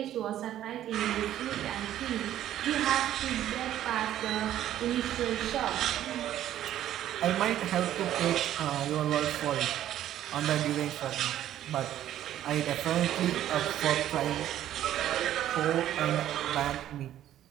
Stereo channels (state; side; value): quieter; left; 12.0 dB